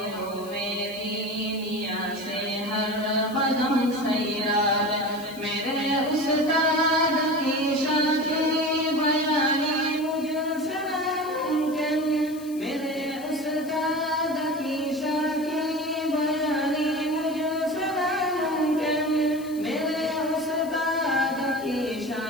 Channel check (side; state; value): left; noise; hiss, 20 dB below the sound